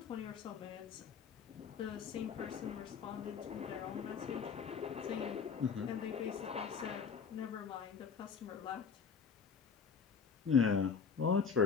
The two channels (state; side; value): quieter; right; 6.1 dB